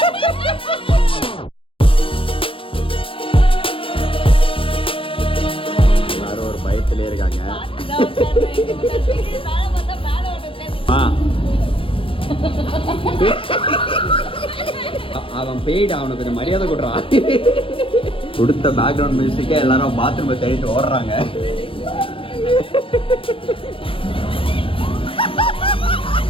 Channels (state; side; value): late; right; 0.26 ms